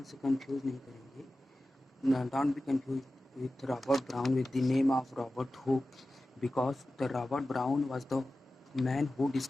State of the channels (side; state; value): both; normal; correlation 0.95